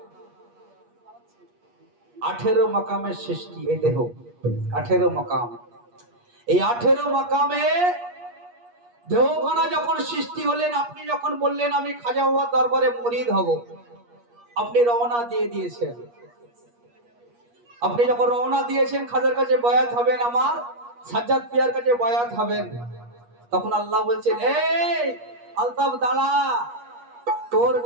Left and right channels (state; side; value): late; left; 8.4 ms